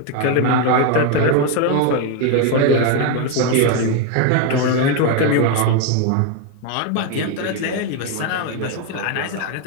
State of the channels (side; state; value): both; different; correlation 0.02